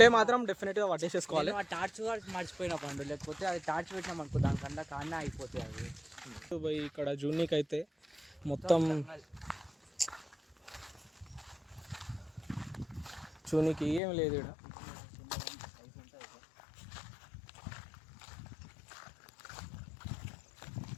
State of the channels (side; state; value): right; drops out; at 14.0 s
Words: మాత్రం డెఫినెట్గా పట్టేసేసుకోవాలి. టార్చ్ మర్చిపోయినా పండు, లేకపోతే అది టార్చ్ పెట్టినాం అనుకో దానికన్నా కానే అయిపోతాయి అవి. ఇక్కడ జూనికి అయితే మొత్తం చూనికి ఏం లేదు ఇక్కడ.